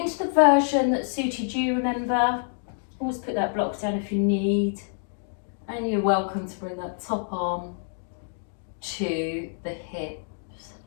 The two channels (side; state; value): right; silent; digital silence